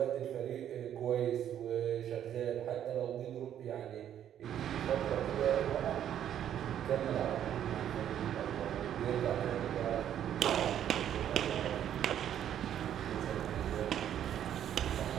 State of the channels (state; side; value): quieter; left; 10.3 dB